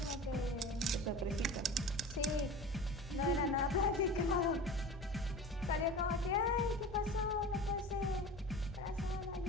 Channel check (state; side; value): normal; both; correlation 0.34